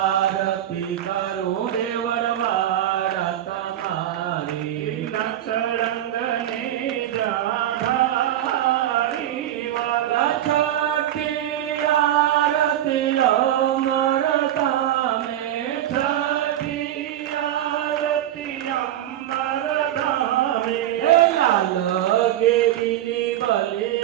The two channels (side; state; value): left; quieter; 12.3 dB